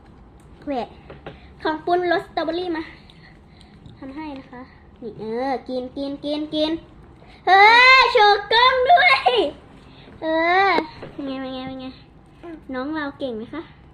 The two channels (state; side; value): identical; both; correlation 1.00